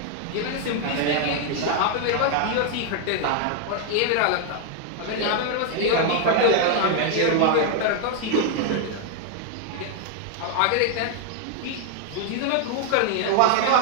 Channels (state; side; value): different; both; correlation 0.00